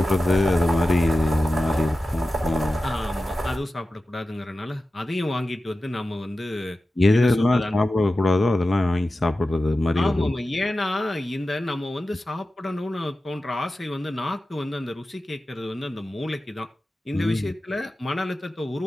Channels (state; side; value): normal; both; correlation 0.94